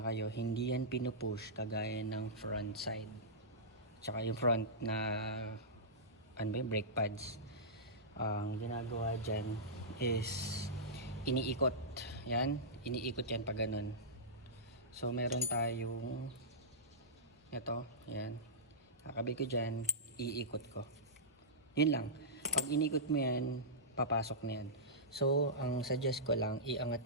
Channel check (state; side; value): normal; both; correlation -0.16